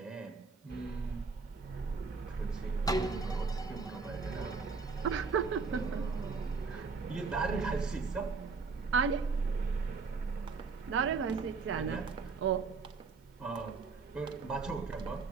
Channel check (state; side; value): quieter; left; 4.6 dB